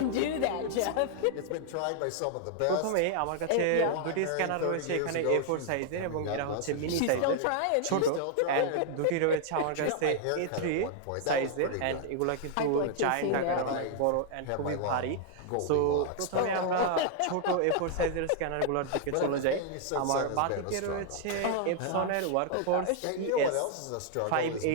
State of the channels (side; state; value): both; different; correlation 0.00